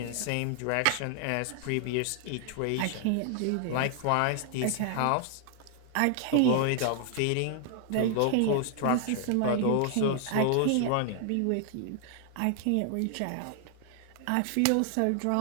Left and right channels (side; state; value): both; different; correlation 0.00